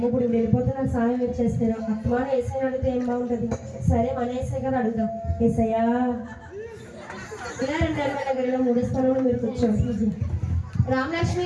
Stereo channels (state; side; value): identical; both; correlation 1.00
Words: ఇప్పుడు వెళ్ళిపోతే నాకు సహాయం మీరు చేస్తారు. అత్తమాన ఏసై అడిగితే ఏం బాగుంటుంది? సరే మన ఏసై కదా అడుగుదాం. ఏసయ్యా ఇలా రండి ఎమ్మెల్యే గారు, ఇలా 3వ స్థానంలో మీరు కూర్చోండి.